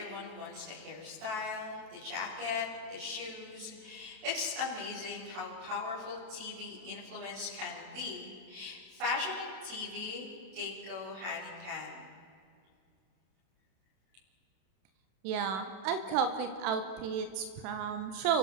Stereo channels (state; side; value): late; left; 32 ms